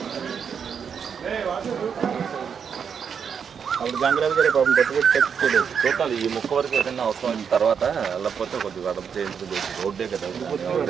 అప్పుడు గంగరాజు గారి పాపం పెట్టుకోలేదు. చూడాలి ఈ ముక్క వరకు ఏదైనా అవసరం తర్వాత వెళ్ళకపోతే కొద్దిగా అడప చేయించుకుంది. రోడ్డే కదా,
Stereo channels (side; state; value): left; quieter; 7.0 dB